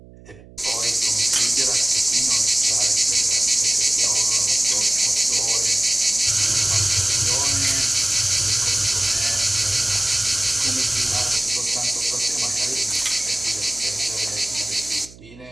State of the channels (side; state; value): right; noise; hum, 22 dB below the sound